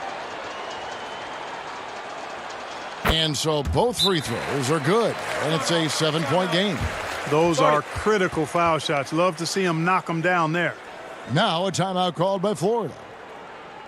And so both free throws are good, and it's a 7-point game. Those are critical foul shots. Love to see him knock them down there. Now a timeout called by Florida.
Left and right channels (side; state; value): both; identical; correlation 1.00